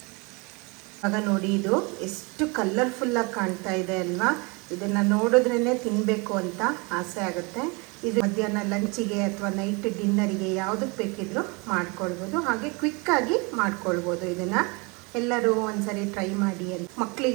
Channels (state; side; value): quieter; left; 29.2 dB